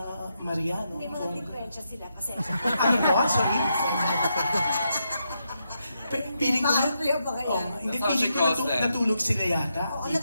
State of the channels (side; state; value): both; inverted; correlation -0.82